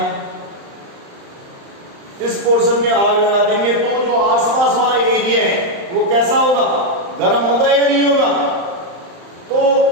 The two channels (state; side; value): late; left; 35 ms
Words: इस पोर्शन में आग लगा देंगे तो जो आसपास वाला एरिया है वो कैसा होगा? गर्म होगा या नहीं होगा? तो